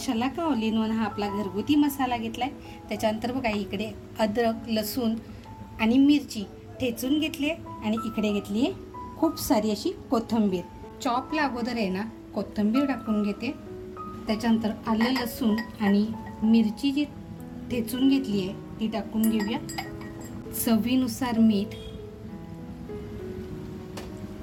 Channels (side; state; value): both; identical; correlation 1.00